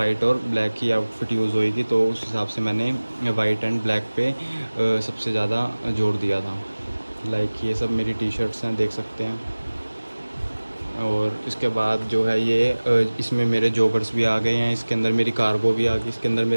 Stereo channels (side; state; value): both; inverted; correlation -1.00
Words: और ब्लैक ही आउटफिट यूज़ होएगी, तो उस हिसाब से मैंने वाइट एंड ब्लैक पे सबसे ज़्यादा जोर दिया था। लाइक ये सब मेरी टी शर्ट्स हैं, देख सकते हैं। और इसके बाद जो है ये इसमें मेरे जॉगर्स भी आ गए हैं, इसके अंदर मेरी कार्गो भी आ गई, इसके अंदर